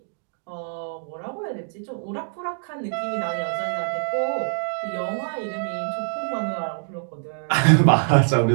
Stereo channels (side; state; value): left; silent; digital silence